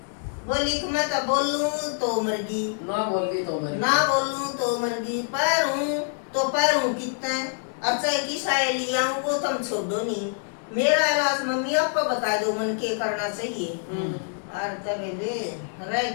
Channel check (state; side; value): silent; right; 61 dB below the other